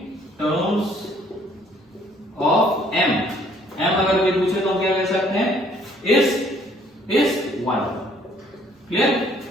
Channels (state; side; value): normal; both; correlation 0.62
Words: M अगर कोई पूछे तो हम क्या कह सकते हैं, इस 1। क्लियर।